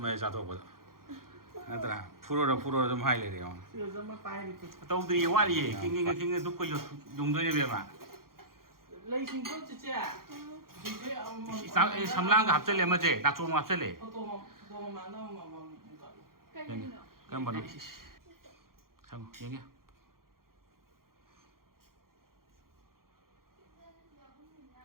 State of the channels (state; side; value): late; left; 0.92 ms